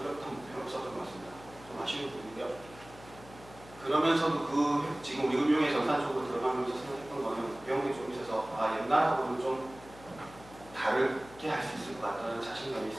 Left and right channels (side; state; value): left; noise; hum, 20 dB below the sound